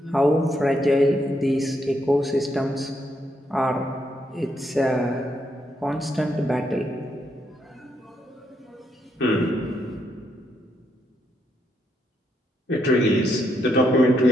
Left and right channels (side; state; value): both; normal; correlation 0.77